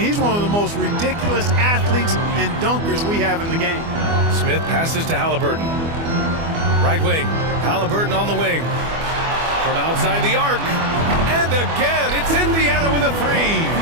he's one of the most ridiculous athletes and dunkers we have in the game. Smith passes to Halliburton. Right wing. Halliburton on the wing. From outside the arc. And again, it's Indiana with a 3.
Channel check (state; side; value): late; left; 24 ms